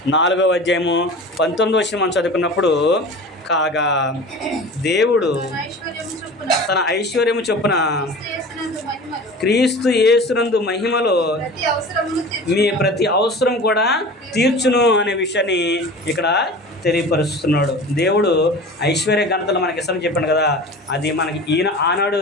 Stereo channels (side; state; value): both; normal; correlation 0.37